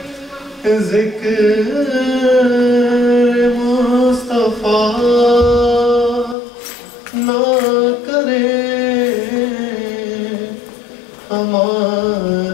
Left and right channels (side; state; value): right; drops out; at 6.4 s